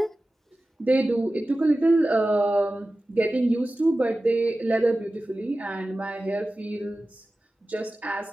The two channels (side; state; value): both; normal; correlation 0.95